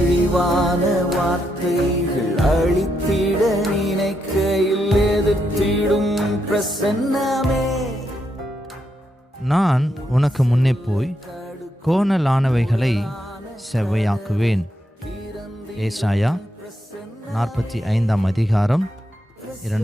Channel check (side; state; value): both; normal; correlation 0.81